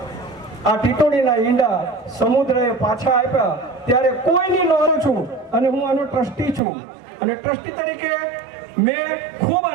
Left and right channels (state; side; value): drops out; left; at 6.6 s